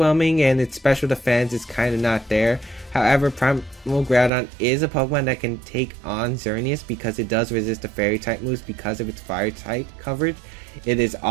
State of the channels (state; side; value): drops out; left; at 4.3 s